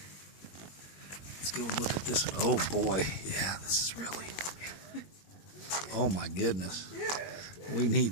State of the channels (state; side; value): late; right; 21 ms